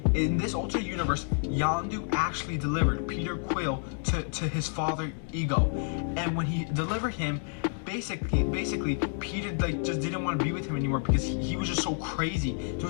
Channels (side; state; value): right; silent; 58 dB below the other